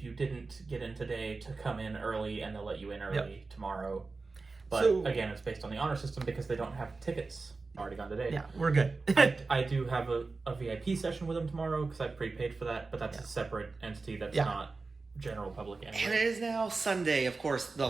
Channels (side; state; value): left; quieter; 3.9 dB